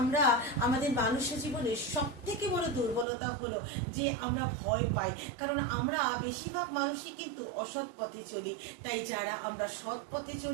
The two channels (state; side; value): drops out; left; at 3.1 s